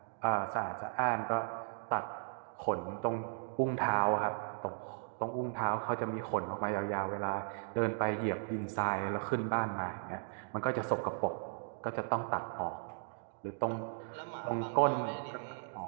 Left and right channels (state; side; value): silent; left; digital silence